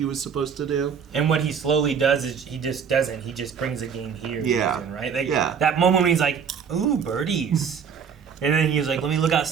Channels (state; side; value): quieter; left; 6.9 dB